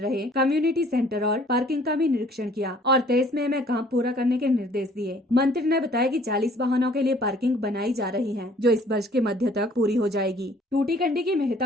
कम्युनिटी सेंटर और पार्किंग का भी निरीक्षण किया और 23 मई में काम पूरा करने के निर्देश दिए। मंत्री ने बताया कि 40 वाहनों के लिए पार्किंग बनाई जा रही है जो इस वर्ष के मध्य तक पूरी हो जाएगी। टूटीकंडी की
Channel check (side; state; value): both; normal; correlation 0.56